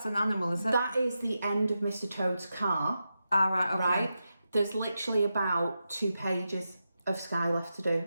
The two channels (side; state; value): both; inverted; correlation -0.89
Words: an animal, is it? That is the end of Mr. Toad's car. Right, okay. Right? There's literally about 2 pages of sky left to do.